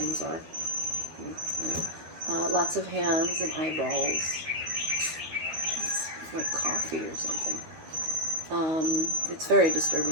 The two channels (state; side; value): late; left; 13 ms